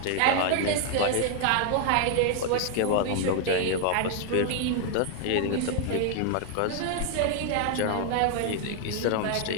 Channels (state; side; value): different; both; correlation 0.00